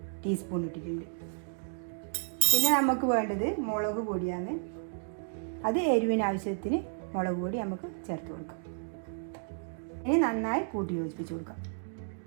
ടീസ്പൂൺ ഇട്ടിട്ടുണ്ട്. പിന്നെ നമുക്ക് വേണ്ടത് മുളക് പൊടിയാണ്. അത് എരിവിന് ആവശ്യത്തിന് മുളക് പൊടി നമുക്ക് ചേർത്ത് കൊടുക്കാം. ഇനി നന്നായി കൂട്ടി യോജിപ്പിച്ച് കൊടുക്കാം.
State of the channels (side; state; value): left; silent; digital silence